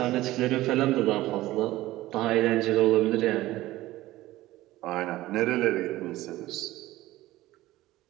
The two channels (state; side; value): quieter; left; 16.8 dB